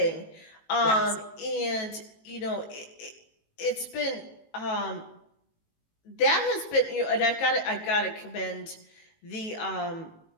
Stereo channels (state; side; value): late; right; 18 ms